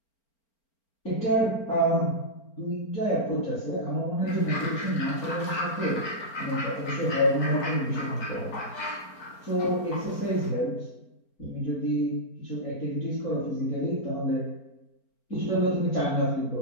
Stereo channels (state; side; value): late; right; 4.4 ms